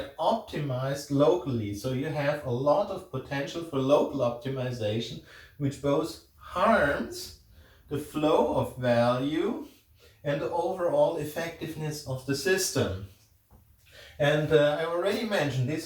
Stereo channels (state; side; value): identical; both; correlation 1.00